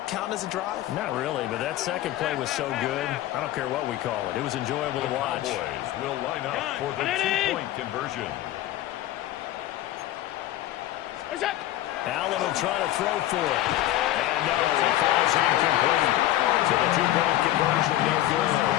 count as a drive? Not really, but that second play was so good. I don't care what we call it. It was enjoyable to watch. The Cowboys will line up for the 2-point conversion. Allen will try to throw for it. And no, it falls incomplete. So the 2-point conversion, no good.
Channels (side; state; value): right; quieter; 14.5 dB